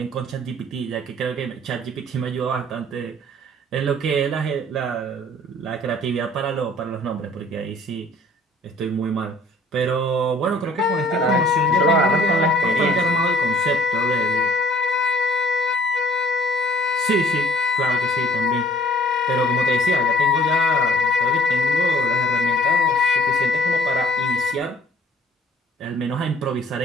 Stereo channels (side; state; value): both; normal; correlation 0.55